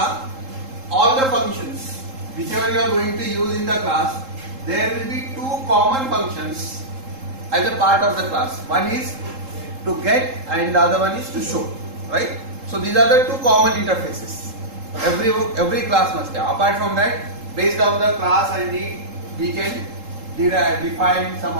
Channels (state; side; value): late; left; 3.8 ms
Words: all the functions, whichever you are going to use in the class, there will be two common functions as a part of the class. One is to get and the other one is to show. Right? So these are the two common interfaces. Every class must have. Apart from that, based on the class and need, we can define some